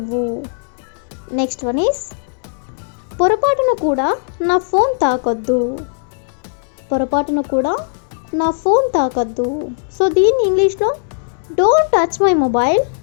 నెక్స్ట్ వన్ ఈస్ పొరపాటున కూడా నా ఫోన్ తాకొద్దు. సో దీన్ని ఇంగ్లీష్లో don't touch my mobile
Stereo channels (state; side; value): silent; right; 68 dB below the other